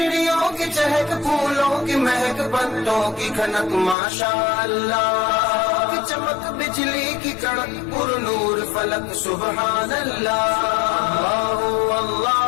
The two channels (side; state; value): right; drops out; at 4.0 s